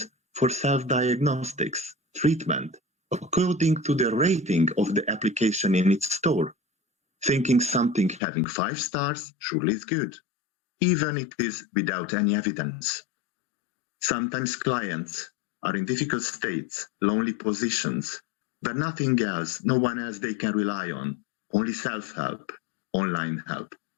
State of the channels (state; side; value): drops out; right; at 8.2 s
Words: for self-diagnostics, treatment, according to the rating of the application in its store, thinking something having 5 stars surely is good, even it is without any evidence. Sometimes clients are in difficult states, lonely positions, where nothing else, no one else they can rely on, only self-help, online help.